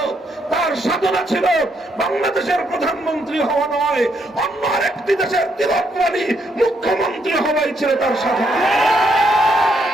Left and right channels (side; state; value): both; normal; correlation 0.75